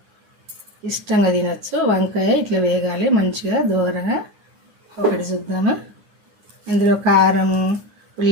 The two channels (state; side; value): late; left; 9.5 ms